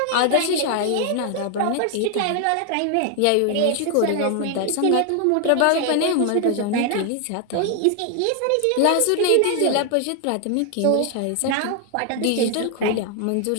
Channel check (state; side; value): different; both; correlation 0.00